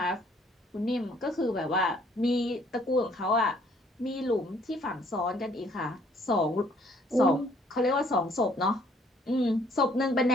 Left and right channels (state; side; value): normal; both; correlation 0.62